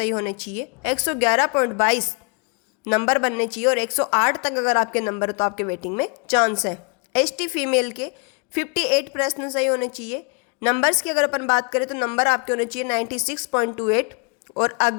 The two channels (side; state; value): right; quieter; 35.0 dB